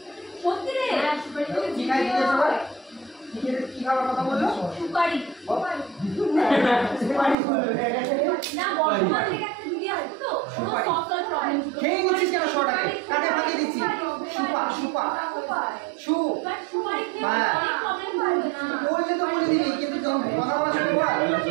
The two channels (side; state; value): left; drops out; at 7.4 s